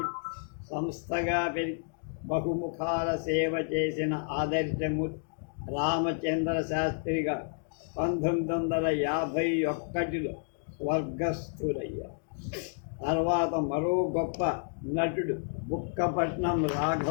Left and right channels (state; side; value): silent; right; digital silence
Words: సంస్థగా పెరిగి బహుముఖాల సేవ చేసిన ఆదర్శమూర్తి రామచంద్ర శాస్త్రి గారు 1951లో స్వర్గస్థులయ్యారు. తర్వాత మరో గొప్ప నటుడు బుక్కపట్నం